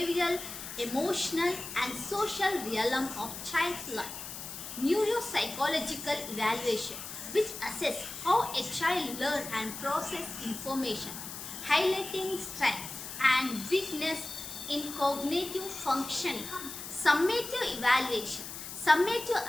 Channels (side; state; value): left; noise; hiss, 9 dB below the sound